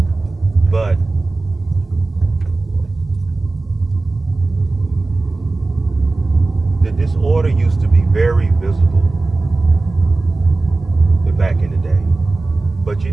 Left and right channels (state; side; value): quieter; left; 3.3 dB